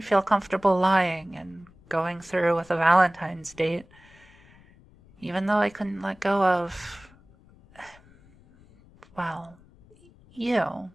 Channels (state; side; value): noise; left; rumble, 27 dB below the sound